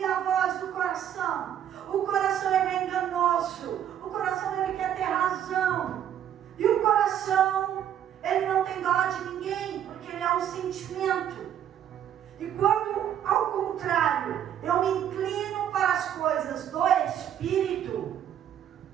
a voz do coração. O coração ele é enganoso, o coração ele quer ter razão. E o coração ele não tem dó de ninguém, porque ele é um sentimento. E quando, ao contrário, eu me inclino para as coisas do Espírito,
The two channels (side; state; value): left; quieter; 10.1 dB